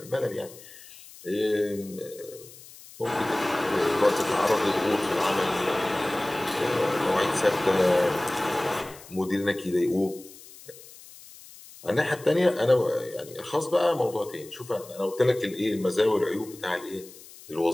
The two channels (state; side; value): noise; left; hiss, 19 dB below the sound